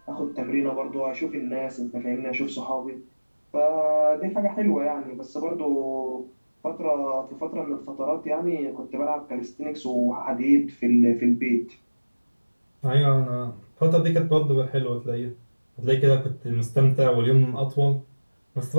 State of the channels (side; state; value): both; inverted; correlation -1.00